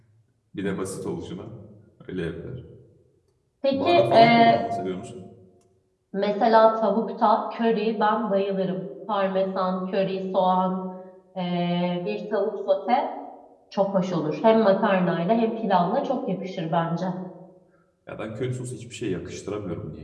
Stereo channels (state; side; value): identical; both; correlation 1.00